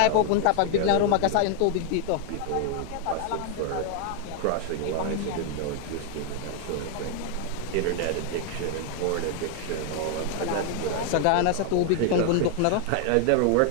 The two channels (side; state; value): both; different; correlation 0.00